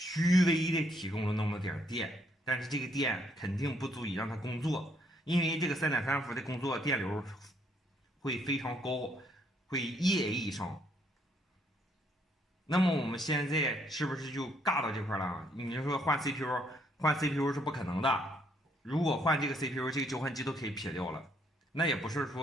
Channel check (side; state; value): both; normal; correlation 0.70